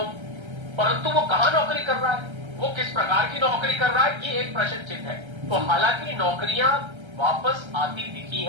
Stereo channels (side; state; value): left; late; 1.3 ms